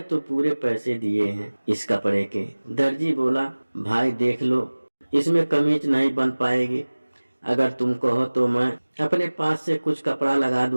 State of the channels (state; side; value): inverted; both; correlation -1.00